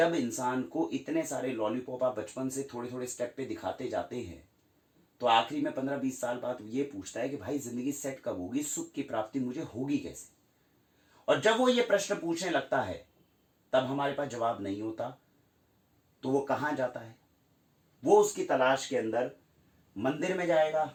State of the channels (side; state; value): both; identical; correlation 1.00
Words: इंसान को इतने सारे लॉलीपॉप आप बचपन से थोड़े थोड़े स्टेप पे दिखाते जाते हैं, तो आखिरी में 15-20 साल बाद ये पूछता है कि भाई जिंदगी सेट कब होगी, सुख की प्राप्ति मुझे होगी कैसे? और जब वो ये प्रश्न पूछने लगता है, तब हमारे पास जवाब नहीं होता, तो वो कहां जाता है? वो उसकी तलाश के अंदर मंदिर में जाएगा,